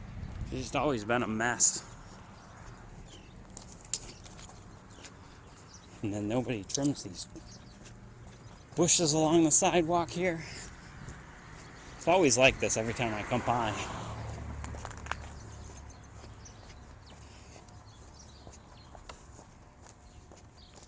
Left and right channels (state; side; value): identical; both; correlation 1.00